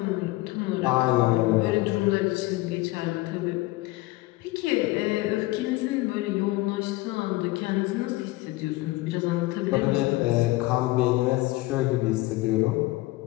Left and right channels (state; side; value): quieter; right; 19.6 dB